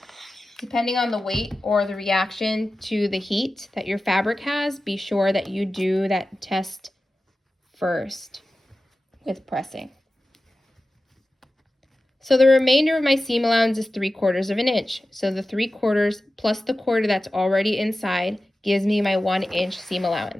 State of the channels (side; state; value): both; normal; correlation 0.95